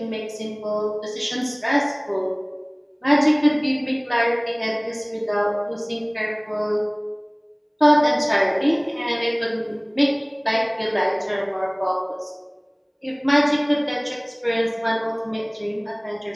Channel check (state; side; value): identical; both; correlation 1.00